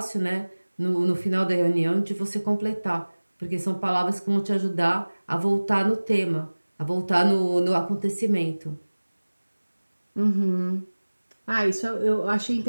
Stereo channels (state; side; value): inverted; both; correlation -1.00